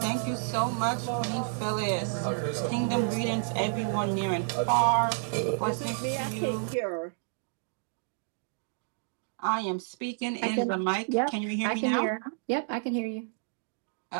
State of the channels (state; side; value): silent; left; digital silence